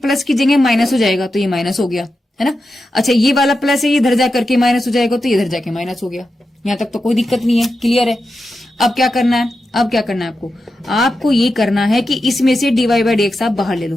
की जगह माइनस हो जाएगा, तो ये माइनस हो गया, है ना। अच्छा, ये वाला प्लस है, ये इधर जा करके माइनस हो जाएगा, तो इधर जाके माइनस हो गया। यहां तक तो कोई दिक्कत नहीं है, क्लियर है। अब क्या करना है, अब क्या करना है आपको ये करना है कि इसमें से dy बाई dx आप बाहर ले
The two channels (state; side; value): normal; both; correlation 0.89